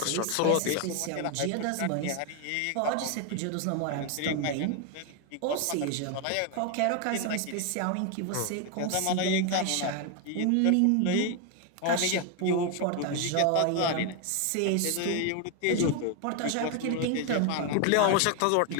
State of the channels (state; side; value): different; both; correlation 0.01